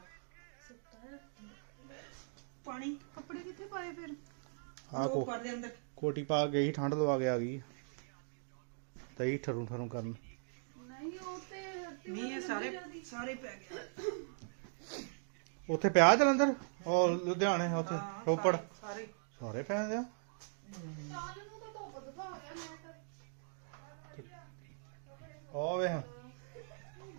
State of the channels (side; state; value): left; silent; digital silence